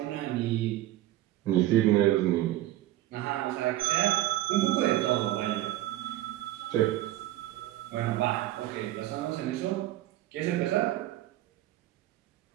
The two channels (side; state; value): left; quieter; 15.0 dB